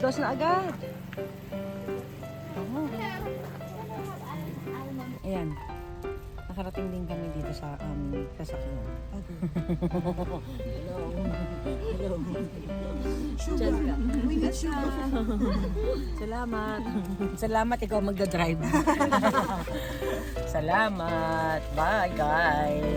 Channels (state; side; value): identical; both; correlation 1.00